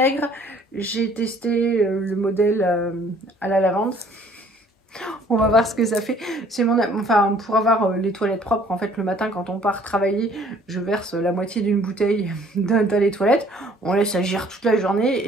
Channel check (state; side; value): normal; both; correlation 0.57